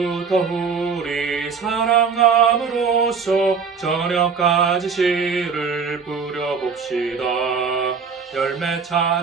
우리 사랑함으로써 저녁까지 시를 뿌려봅시다. 열매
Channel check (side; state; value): left; quieter; 5.7 dB